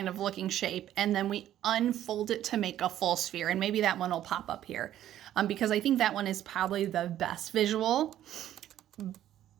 of looking shape, and then we unfold it to make a full sphere. And maybe that one will pop up here because I think that one is probably the best visual.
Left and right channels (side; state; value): left; quieter; 12.1 dB